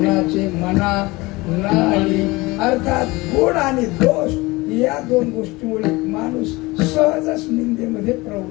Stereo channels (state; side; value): quieter; right; 22.3 dB